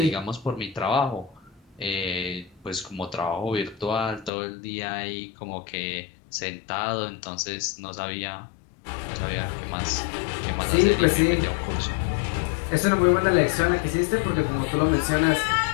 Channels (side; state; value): right; drops out; at 4.3 s